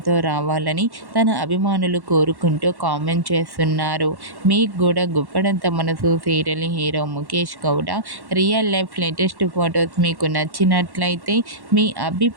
రావాలని తన అభిమానులు కోరుకుంటూ కామెంట్ చేస్తున్నారు. మీకు కూడా గుప్పడంత మనసు serial hero Mukesh Gowda real life latest photos మీకు నచ్చినట్లయితే మీ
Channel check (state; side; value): late; left; 1.1 ms